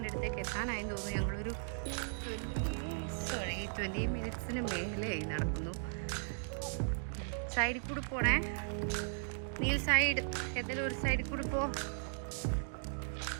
അടുത്തേക്ക് എത്താനായെന്ന് തോന്നുന്നു. ഞങ്ങളൊരു 20 മിനിറ്റ്സിന് മേലെയായി നടക്കുന്നു. സൈഡിൽ കൂടെ പോണേ. നീൽ സൈഡ് ഏതെങ്കിലും ഒരു സൈഡിൽ കൂടെ പോ.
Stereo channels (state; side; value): silent; left; digital silence